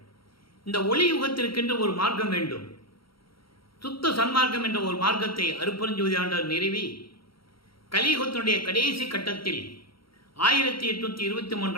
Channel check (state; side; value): late; right; 0.74 ms